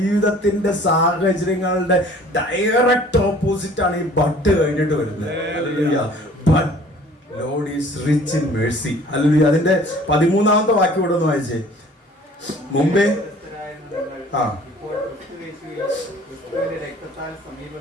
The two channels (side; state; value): both; normal; correlation 0.51